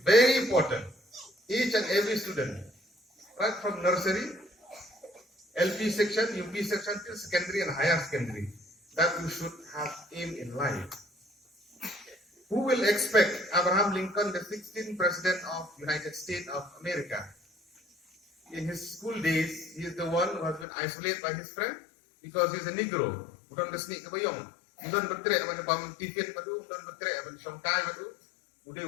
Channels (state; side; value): drops out; right; at 20.7 s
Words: very important. Each and every student, right from nursery, LP section, UP section till secondary and higher secondary, that you should have aim in life. Who will expect Abraham Lincoln, the 16th president of United States of America? In his school days, he is the one who has been isolated by his friend because he is a Negro. Bukan kesini kebayong. Bukan berteriak pada pam tifin padu, bukan berteriak pada songkai padu. Udah